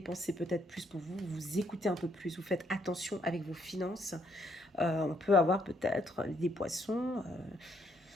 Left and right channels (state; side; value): normal; both; correlation 0.71